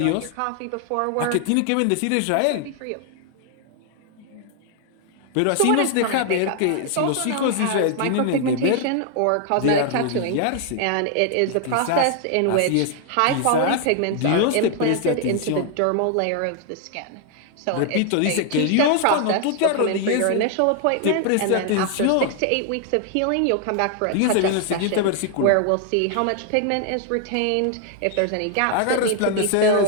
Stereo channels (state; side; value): different; both; correlation 0.00